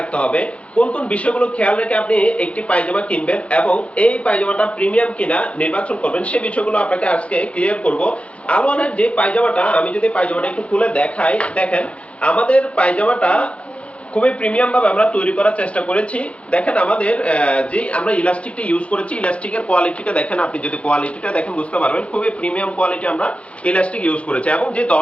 হবে। কোন কোন বিষয়গুলো খেয়াল রেখে আপনি একটি পায়জামা কিনবেন এবং এই পায়জামাটা প্রিমিয়াম কিনা নির্বাচন করবেন, সেই বিষয়গুলো আপনাকে আজকে ক্লিয়ার করব। আলোয়ানের যে পায়জামাটা, আমি যদি পায়জামাটা একটু খুলে দেখাই, দেখেন আমাদের পায়জামাটা খুবই প্রিমিয়াম ভাবে আমরা তৈরি করার চেষ্টা করেছি। দেখেন আমাদের যে আমরা ইলাস্টিকটা ইউজ করেছি, ইলাস্টিকের কোয়ালিটিটা দেখেন, আপনি যদি কোয়ালিটিটা দেখেন বুঝতে পারবেন খুবই প্রিমিয়াম কোয়ালিটি আমরা ইলাস্টিক ইউজ করেছি। এবং যে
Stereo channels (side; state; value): right; late; 0.062 ms